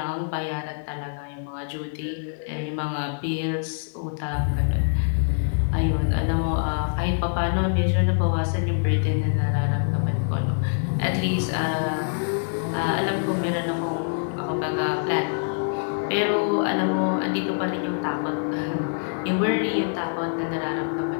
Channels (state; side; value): silent; right; digital silence